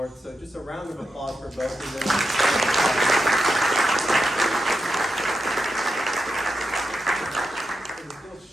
So just a round of applause for both of them. We'll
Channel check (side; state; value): both; normal; correlation 0.88